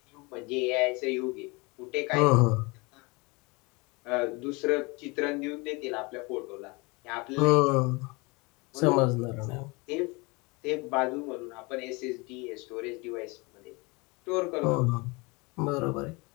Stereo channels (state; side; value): quieter; right; 26.8 dB